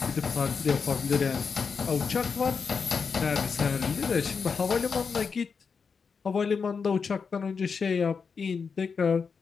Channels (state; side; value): quieter; right; 5.6 dB